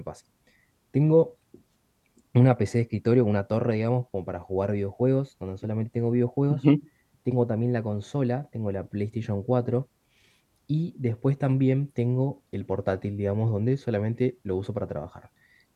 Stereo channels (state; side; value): identical; both; correlation 1.00